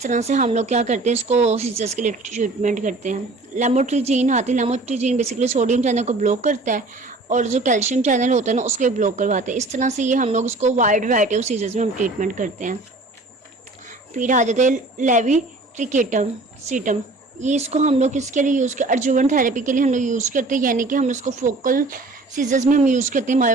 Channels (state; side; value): quieter; left; 3.1 dB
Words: से हम लोग क्या करते हैं, इसको सीजर्स के लिए ट्रीटमेंट करते हैं। लेमोट्रिजीन आती है। लेमोट्रिजीन बेसिकली सोडियम चैनल को ब्लॉक करता है और जो कैल्शियम चैनल होता है ना उसको भी ब्लॉक करवाता है। इस तरह से ये हम लोग इसको वाइड वैरायटी ऑफ सीजर्स में हम ट्रीटमेंट करते हैं। फिर आ जाते हैं लेविट्रिकेटम सीटम। ये इसको हम लोग किसके लिए यूज़ कर, अर्जुवन थेरेपी के लिए हम लोग यूज़ करते हैं, यानी कि हम उसको फोकल सीजर्स में हम यूज़ करते हैं,